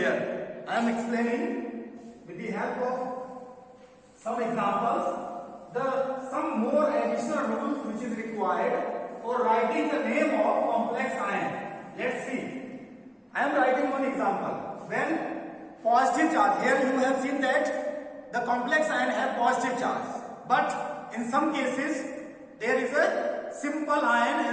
I am explaining with the help of some examples some more additional rules which is required for writing the name of complex ion. Let's see. I am writing one example. When positive charge, here you have seen that the complex ion have positive charge, but in some cases there is a simple ion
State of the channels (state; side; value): identical; both; correlation 1.00